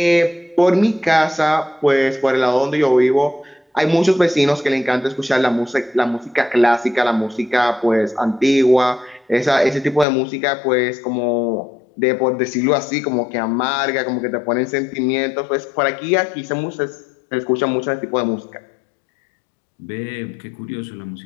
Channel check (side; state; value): right; drops out; at 10.1 s